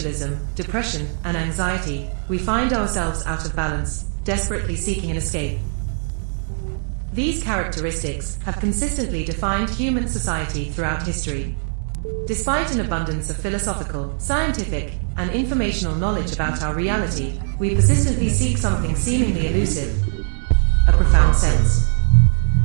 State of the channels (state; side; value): silent; left; digital silence